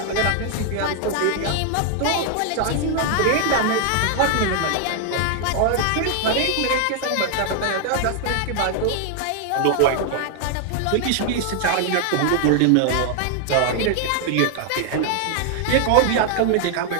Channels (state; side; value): different; both; correlation 0.00